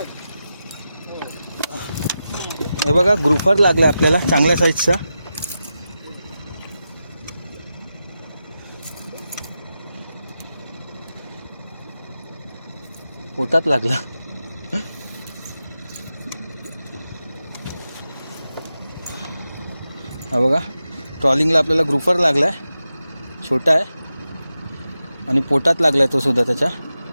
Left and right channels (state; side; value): inverted; both; correlation -0.90